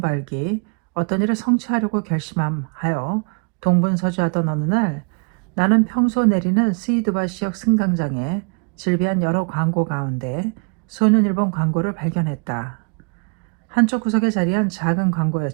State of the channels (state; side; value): quieter; left; 39.4 dB